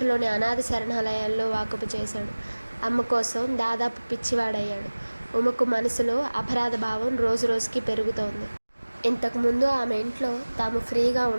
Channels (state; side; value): inverted; both; correlation -1.00